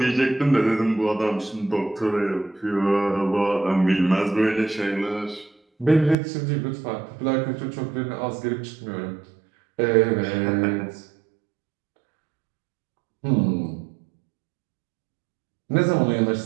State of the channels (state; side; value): drops out; left; at 6.2 s